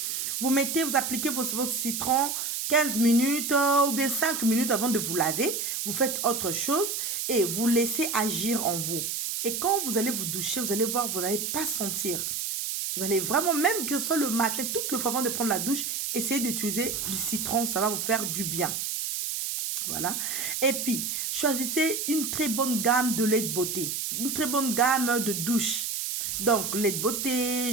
Vous appliquez votre citron 15 minutes ou bien 5 minutes avant de vous laver. Vous faites autre chose et vous laissez agir en vous. Et quand vous allez vous doucher, vous allez voir, vous n'allez pas sentir. Vous allez vraiment, même que ce soit le matin, toute le fois avant de prendre la douche, essayez d'utiliser du citron, ça va vous faire du bien. Voilà. Et puis, choisissez une très bonne gamme de lait de beauté. Une très bonne gamme de douche. Donc, lait de beauté,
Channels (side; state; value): right; noise; hiss, 2 dB below the sound